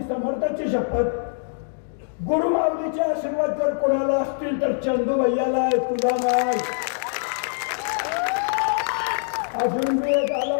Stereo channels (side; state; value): right; silent; digital silence